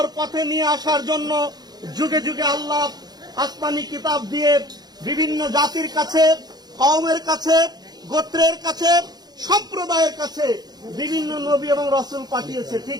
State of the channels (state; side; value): late; left; 0.19 ms